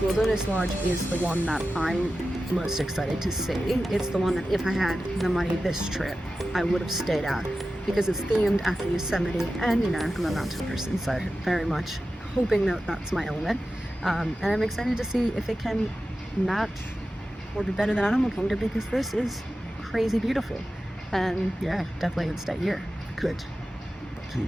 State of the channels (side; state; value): both; normal; correlation 0.93